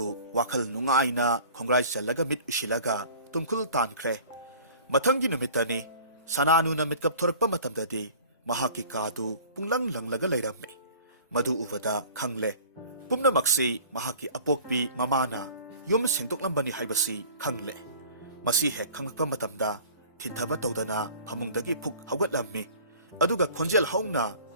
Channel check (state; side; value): inverted; both; correlation -0.46